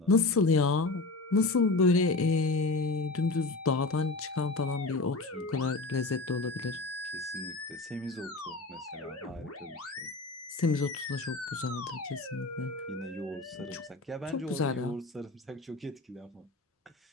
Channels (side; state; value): right; quieter; 3.4 dB